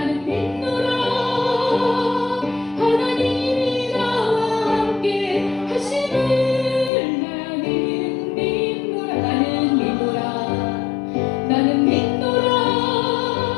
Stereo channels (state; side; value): drops out; right; at 6.9 s